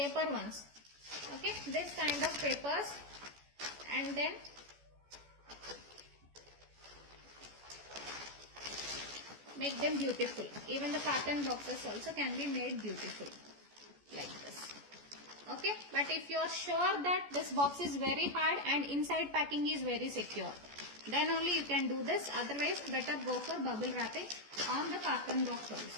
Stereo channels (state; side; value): late; left; 14 ms